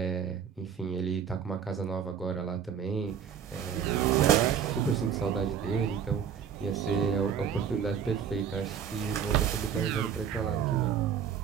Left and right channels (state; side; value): quieter; left; 8.0 dB